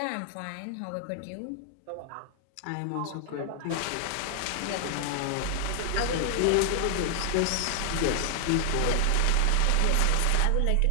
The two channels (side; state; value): both; different; correlation -0.01